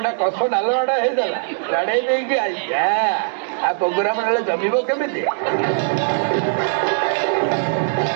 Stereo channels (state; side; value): silent; left; digital silence